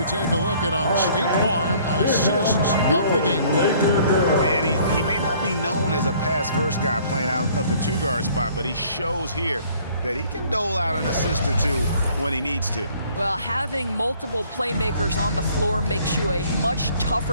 take a look at our State Farm assists of the game. And he may not be known as a pass-first guy playing out of the 2-guard spot, but he shows here that he can dole out an assist or 2 when he needs to. Well, having multiple playmakers on the floor makes you a much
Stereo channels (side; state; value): both; inverted; correlation -0.57